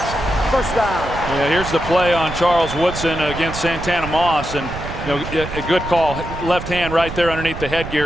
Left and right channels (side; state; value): right; noise; rumble, 9 dB below the sound